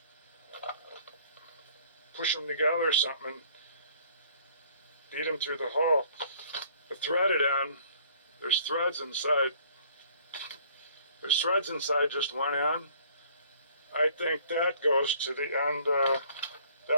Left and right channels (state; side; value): inverted; both; correlation -0.57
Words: push them together or something and beat them through the hole. The threaded end, there's threads inside. There's threads inside just one end. I think that goes to the end,